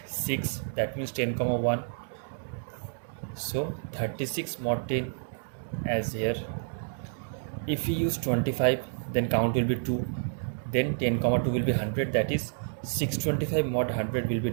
6, that means 10 comma 1, so 36 mod 10 as here. If we use 25, then count will be 2, then 10 comma 2 will be 100, that is 625 mod 100 will be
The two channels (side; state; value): left; silent; digital silence